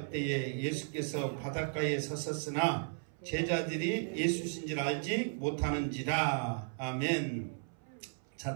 때에 예수께서 바닷가에 섰었으나 제자들이 예수신 줄 알지 못하는지라. 아멘. 자,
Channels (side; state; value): left; silent; 54 dB below the other